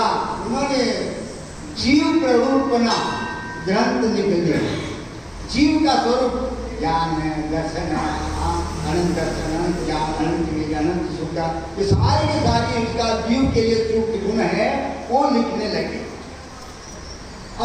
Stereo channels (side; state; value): both; identical; correlation 1.00